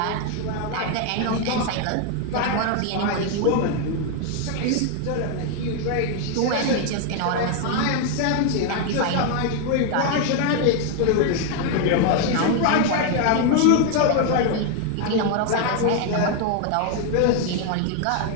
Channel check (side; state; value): both; different; correlation 0.01